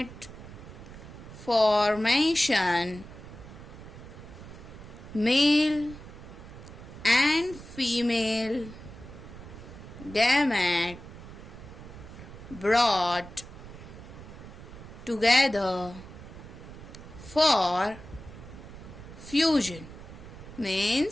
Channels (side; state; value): right; noise; rumble, 15 dB below the sound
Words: formation, male and female gamete brought together for fusion,